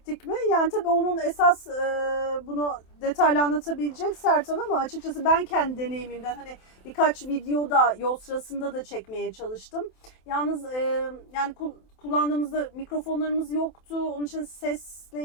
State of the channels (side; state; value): right; late; 27 ms